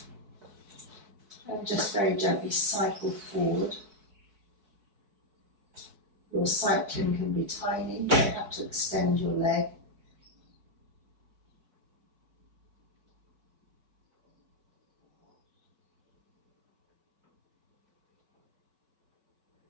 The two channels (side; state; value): left; late; 4.7 ms